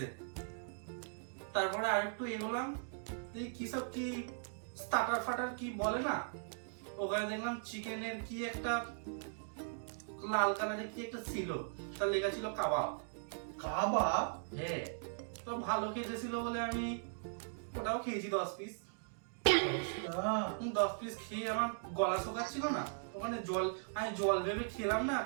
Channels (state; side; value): silent; left; digital silence